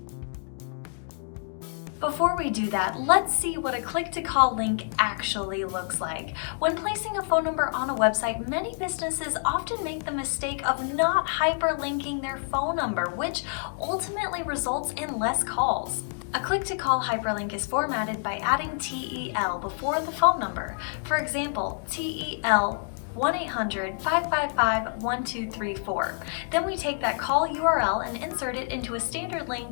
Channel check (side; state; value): right; silent; 60 dB below the other